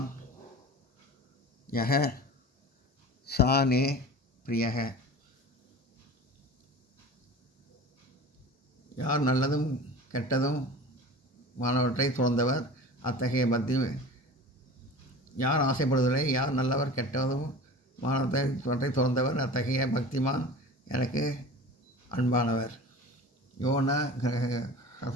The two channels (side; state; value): both; normal; correlation 0.36